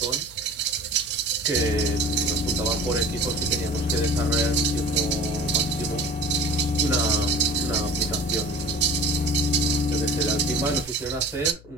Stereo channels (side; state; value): left; noise; hum, 23 dB below the sound